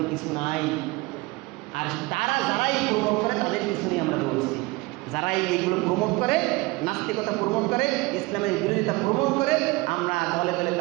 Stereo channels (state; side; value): quieter; left; 23.1 dB